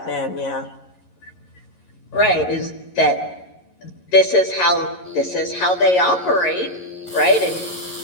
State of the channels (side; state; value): right; late; 11 ms